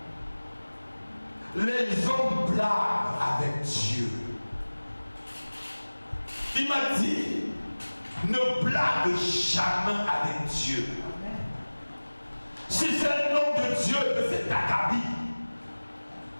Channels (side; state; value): both; inverted; correlation -1.00